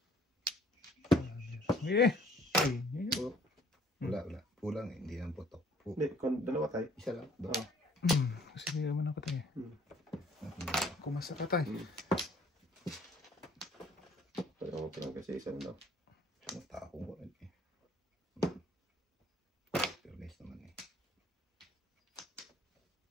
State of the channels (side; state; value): both; normal; correlation 0.59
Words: Eh! Ay, yun yun. Wala. Kulang eh. Hindi nang putok. Hindi, dalawa tayo. Isa lang. Dong. Kasi hindi naman ako tayo. Kumasa ka tayo. Kaya mo pa lang kasi isa na. Matako ko rin eh. Pero nice naman eh.